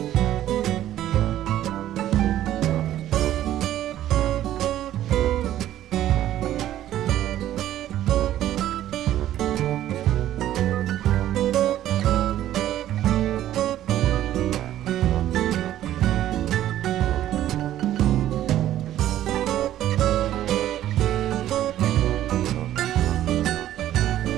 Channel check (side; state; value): left; quieter; 12.7 dB